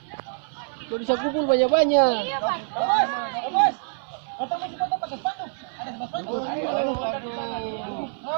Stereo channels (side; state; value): left; silent; 57 dB below the other